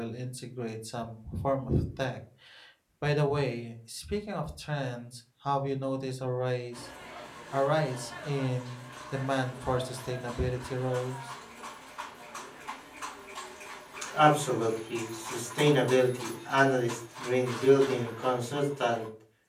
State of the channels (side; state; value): both; identical; correlation 1.00